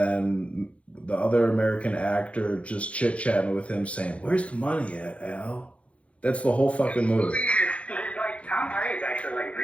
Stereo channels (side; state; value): right; late; 0.063 ms